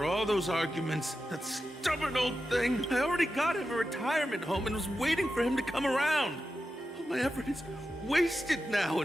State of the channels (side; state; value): both; normal; correlation 0.91